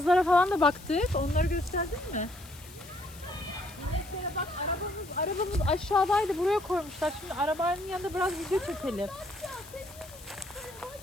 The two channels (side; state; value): left; noise; hiss, 20 dB below the sound